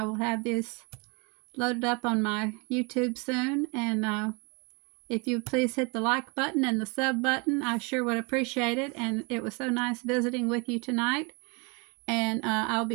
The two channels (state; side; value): quieter; left; 31.2 dB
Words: will have this loaded up on my YouTube soon, and if you please hit the like button and the sub button, I sure would appreciate it. And it was so nice visiting with you tonight. And I'll